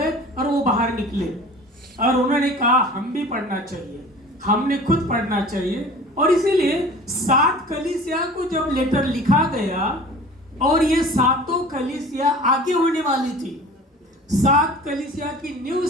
और वो बाहर निकले और उन्होंने कहा हम भी पढ़ना चाहिए, हमने खुद पढ़ना चाहिए। और इसीलिए 7 कलीसिया को जब लेटर लिखा गया और ये 7 कलीसिया आगे होने वाली थी, 7 कलीसिया की न्यू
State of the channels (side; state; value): both; normal; correlation 0.42